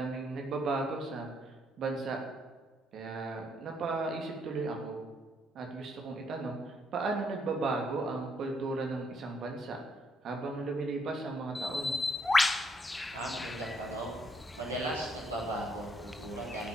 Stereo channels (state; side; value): normal; both; correlation 0.72